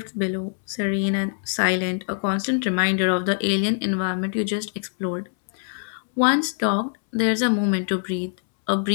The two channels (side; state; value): right; silent; 63 dB below the other